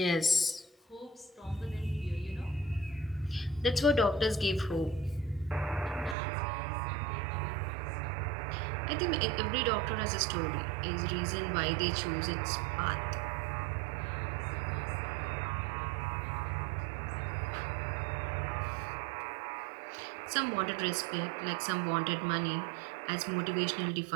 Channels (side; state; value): left; drops out; at 6.2 s